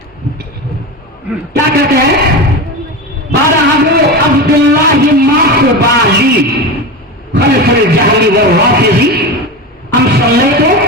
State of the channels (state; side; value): normal; both; correlation 0.22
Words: کیا کہتے ہیں، قال ابو عبد اللہ ماخبالی خلف الجہل والرافض ام صلیت